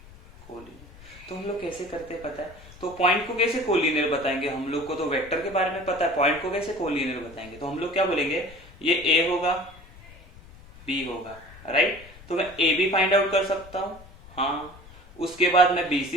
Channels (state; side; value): noise; left; rumble, 21 dB below the sound